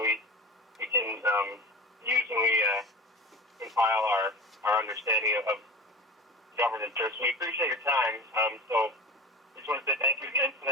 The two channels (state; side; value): normal; both; correlation 0.32